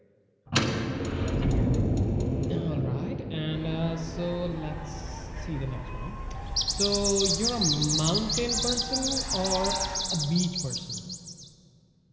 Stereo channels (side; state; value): both; identical; correlation 1.00